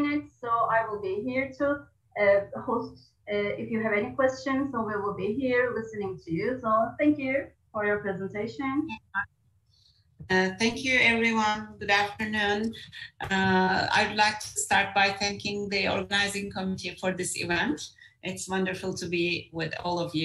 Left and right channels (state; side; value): identical; both; correlation 1.00